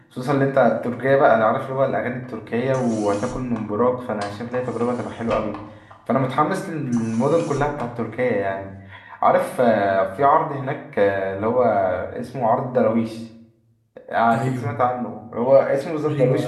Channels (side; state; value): both; identical; correlation 1.00